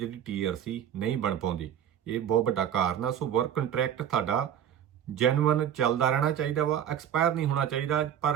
TRC ਨਹੀਂ ਬਣ ਪਾਉਂਦੀ। ਇਹ ਬਹੁਤ ਵੱਡਾ ਕਾਰਨ ਆ। ਸੋ ਵਰਕ ਕੰਟਰੈਕਟ ਤੁਹਾਡਾ ਜੈਨੂਅਨ ਚੱਲਦਾ ਰਹਿਣਾ ਚਾਹੀਦਾ ਵਾ, ਐਕਸਪਾਇਰ ਨਹੀਂ ਹੋਣਾ ਚਾਹੀਦਾ।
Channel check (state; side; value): quieter; left; 9.7 dB